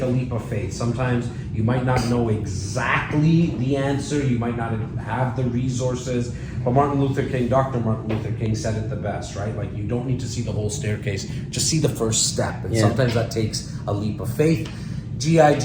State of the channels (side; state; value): both; identical; correlation 1.00